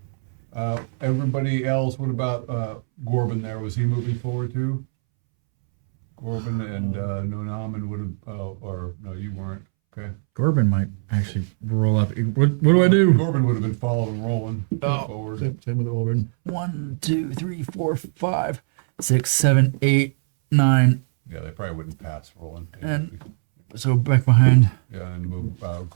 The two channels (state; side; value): silent; left; 64 dB below the other